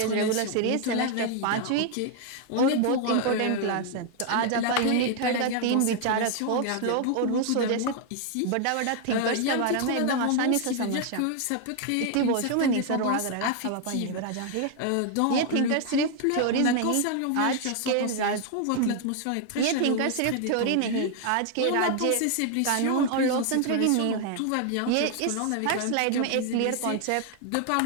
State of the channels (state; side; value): different; both; correlation 0.00